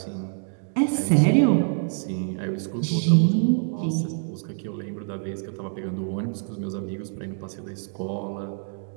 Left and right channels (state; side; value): silent; left; digital silence